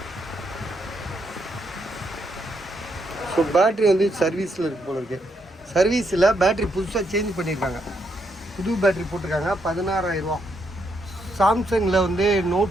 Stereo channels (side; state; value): both; normal; correlation 0.77